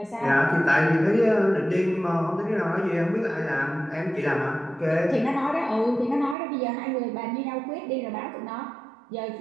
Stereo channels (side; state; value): left; drops out; at 6.4 s